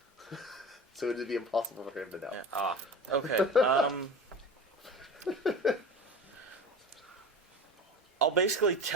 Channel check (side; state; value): both; normal; correlation 0.33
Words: So it would be impossible for him to know. Yeah. Ah. Okay. I'll basically